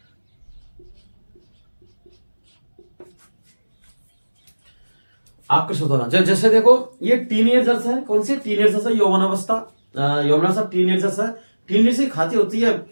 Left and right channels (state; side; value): inverted; both; correlation -1.00